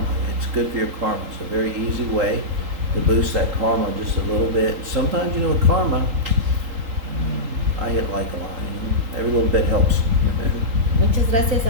It's good for your karma. It's a very easy way to boost that karma just a little bit. Sometimes, with karma, I hit like a lot. Every little bit helps. Muchas gracias,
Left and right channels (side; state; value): left; late; 3.8 ms